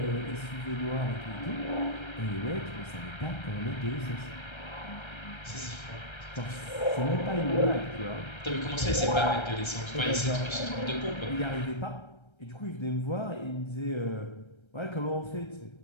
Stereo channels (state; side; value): late; right; 1.3 ms